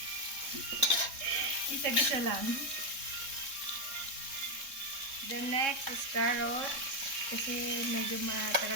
Gisa-gisa lang. The next is carrots. Kasi medyo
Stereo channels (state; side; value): late; left; 3.7 ms